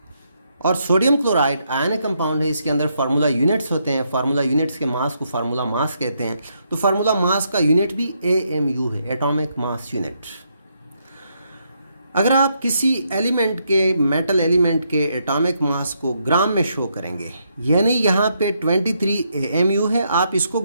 और सोडियम क्लोराइड आयनिक कंपाउंड है, इसके अंदर फार्मूला यूनिट्स होते हैं. फार्मूला यूनिट्स के मास को फार्मूला मास कहते हैं. तो फार्मूला मास का यूनिट भी AMU है, एटॉमिक मास यूनिट. अगर आप किसी एलिमेंट के, मेटल एलिमेंट के एटॉमिक मास को ग्राम में शो करेंगे, यानी यहाँ पे 23 AMU है, आप इसको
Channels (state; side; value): inverted; both; correlation -0.77